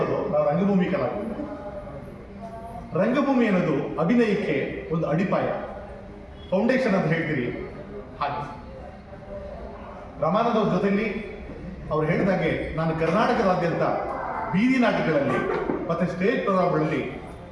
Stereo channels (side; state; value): both; identical; correlation 1.00